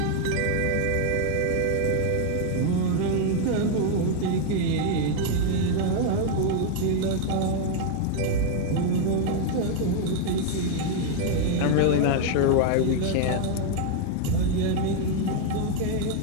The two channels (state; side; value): different; both; correlation 0.00